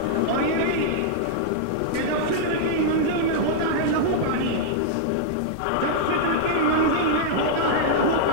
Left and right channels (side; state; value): both; different; correlation -0.02